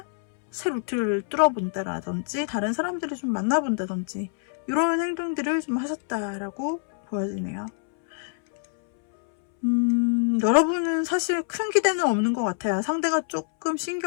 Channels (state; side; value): silent; right; 62 dB below the other